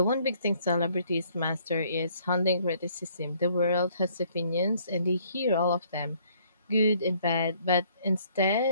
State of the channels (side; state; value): both; inverted; correlation -0.63